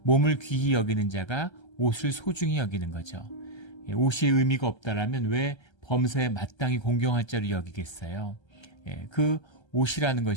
몸을 귀히 여기는 자가 옷을 소중히 여기는 거죠. 옷이 의미가 없다라면 왜 범사에 마땅히 공경할 자로 여기겠어요? 그 옷이라는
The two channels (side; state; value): right; late; 1.3 ms